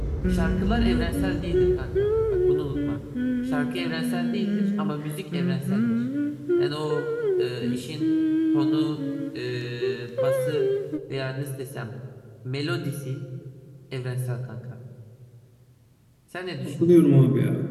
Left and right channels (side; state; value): both; identical; correlation 1.00